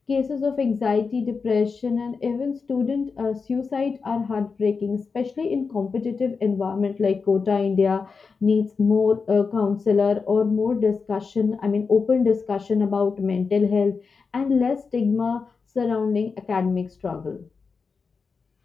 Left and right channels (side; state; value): right; quieter; 5.0 dB